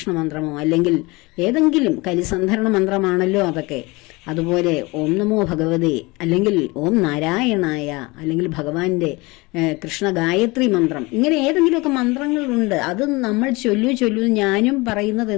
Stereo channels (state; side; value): quieter; right; 24.2 dB